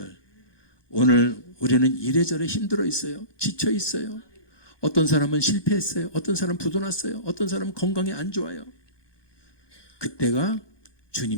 오늘 우리는 이래저래 힘들어 있어요. 지쳐 있어요. 어떤 사람은 실패했어요. 어떤 사람은 부도났어요. 어떤 사람은 건강이 안 좋아요. 그때가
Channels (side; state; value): right; late; 1.2 ms